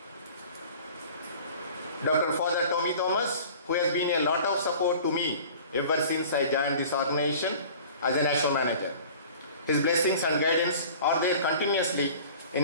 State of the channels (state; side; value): inverted; both; correlation -0.44